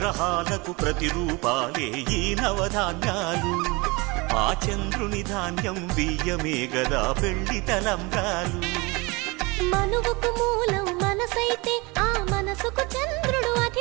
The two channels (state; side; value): quieter; left; 25.7 dB